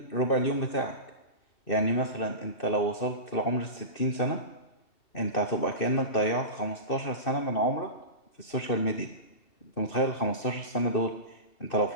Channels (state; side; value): late; right; 2.6 ms